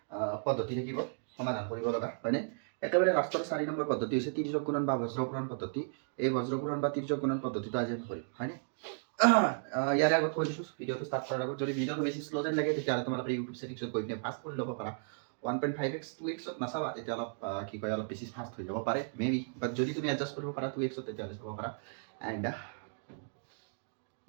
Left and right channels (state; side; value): silent; left; digital silence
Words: পদ্ধতি থাকিব সমাধান কৰিব লগা হয়নে একেবাৰে লাষ্টৰ 4 নম্বৰ পদ্ধতি হৈছে তিৰ্যক গুণন বা বজ্ৰগুণন পদ্ধতি এই বজ্ৰগুণন বা তিৰ্যক গুণন পদ্ধতিটো আজি আমি কৰিম হয়নে ইয়াৰে আগত কৈ দিছোঁ ভিডিঅ'টো ষ্টাৰ্ট কৰাৰ আগত যদি ভিডিঅ'টো বেছি শ্ল' যেন লাগে তেতিয়াহ'লে তোমালোকে ইউটিউব ছেটিংছত গৈ পিনে ফাষ্ট কৰি ল'ব পাৰা 1.5x 2x নাচাবা তেতিয়া অলপ কি কয় অলপ বেছি ফাষ্ট হৈ যাব পাৰে মেবি বাট যদি তুমি এডজাষ্ট কৰিব পাৰা 2x তেতিয়াহ'লে চাব পাৰা এণ্ড